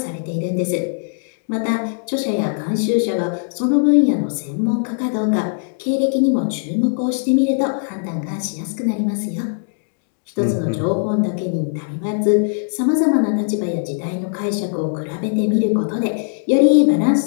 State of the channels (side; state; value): right; silent; digital silence